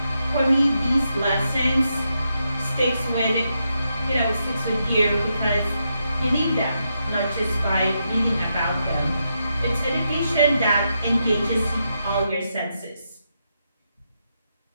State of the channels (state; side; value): inverted; both; correlation -0.83